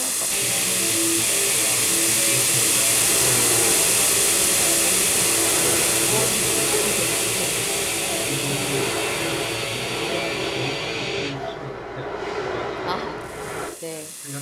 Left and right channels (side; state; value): both; identical; correlation 1.00